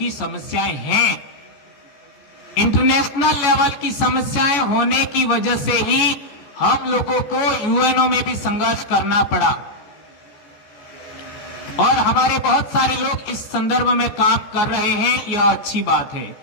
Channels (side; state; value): right; late; 14 ms